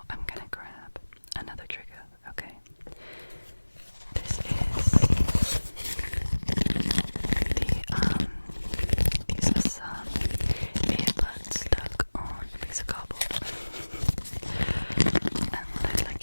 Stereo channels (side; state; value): both; inverted; correlation -1.00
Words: I'm gonna grab another trigger, okay? This is these are some earbuds stuck on a piece of cardboard. And what I'd like